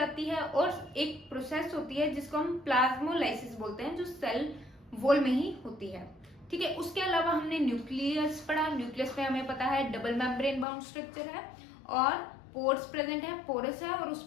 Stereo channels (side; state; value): right; drops out; at 10.7 s